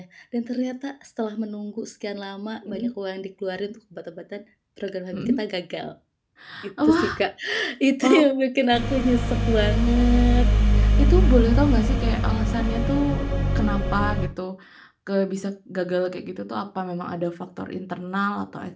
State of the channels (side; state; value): both; identical; correlation 1.00